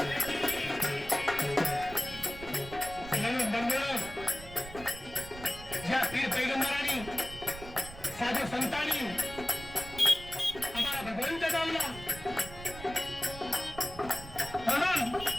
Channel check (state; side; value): noise; right; rumble, 14 dB below the sound